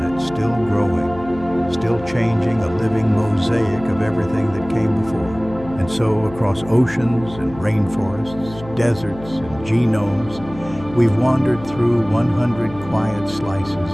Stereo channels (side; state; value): left; noise; hum, 16 dB below the sound